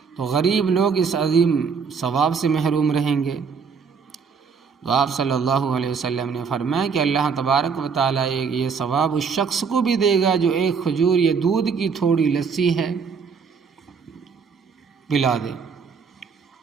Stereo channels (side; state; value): left; quieter; 5.8 dB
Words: تو غریب لوگ اس عظیم ثواب سے محروم رہیں گے۔ تو آپ صلی اللہ علیہ وسلم نے فرمایا کہ اللہ تبارک و تعالیٰ یہ ثواب اس شخص کو بھی دے گا جو ایک کھجور یا دودھ کی تھوڑی لسی ہے پلا دے،